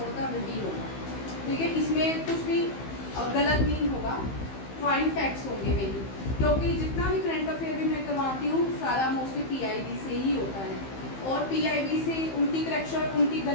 है वही होगा। ठीक है, इसमें कुछ भी गलत नहीं होगा, पॉइंट फैक्ट्स होंगे मेरी, क्योंकि जितना भी करंट अफेयर भी मैं करवाती हूँ सारा मोस्टली PIB से ही होता है। और PIB से उनकी करेक्शन उनकी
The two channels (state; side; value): late; right; 15 ms